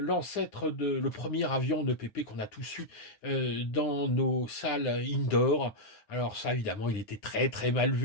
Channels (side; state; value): right; late; 9.6 ms